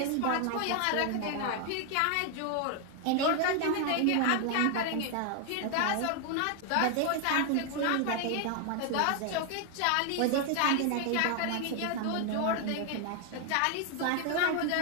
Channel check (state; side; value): different; both; correlation 0.00